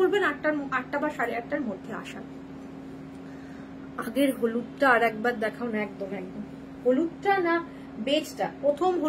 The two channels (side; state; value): both; identical; correlation 1.00